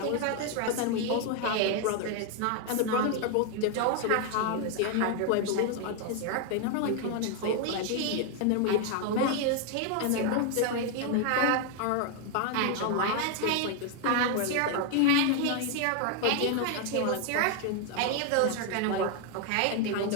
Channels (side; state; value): both; different; correlation 0.00